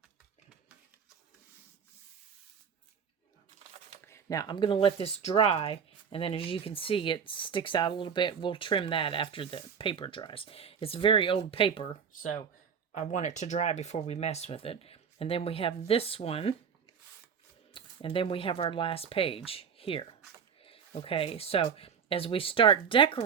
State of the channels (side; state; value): left; quieter; 6.8 dB